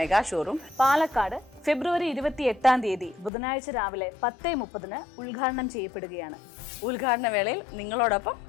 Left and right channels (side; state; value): right; drops out; at 3.3 s